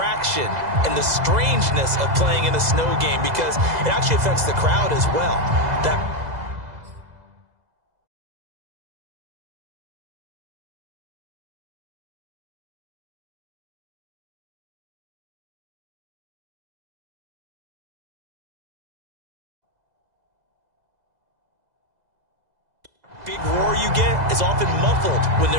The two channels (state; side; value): late; left; 2.0 ms